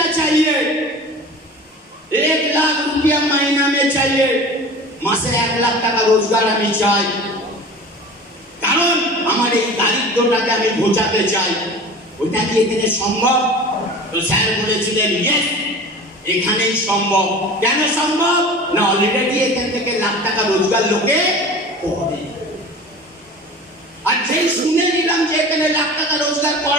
चाहिए, 1 लाख रुपया महीना में चाहिए, মাসে 1 লাখ টাকা রোজগার আমি চাই, কারণ আমার এই দারিদ্রটাকে আমি ঘোচাতে চাই। ওইটা কি এখানে সম্ভব? তো স্যার বলেছিলেন ইয়েস, এখানেই সম্ভব। কেন সম্ভব? না অলরেডি এখান থেকে লাখ টাকা রোজগার লোকে করে। আর যেই শুনে নিলাম যে এখানে লাখ টাকা রোজগার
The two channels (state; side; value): normal; both; correlation 0.38